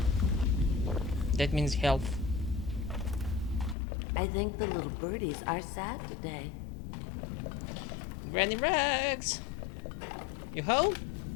That means health. I think the little birdies are sad today. Granny Rags! You home?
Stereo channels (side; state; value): right; drops out; at 3.8 s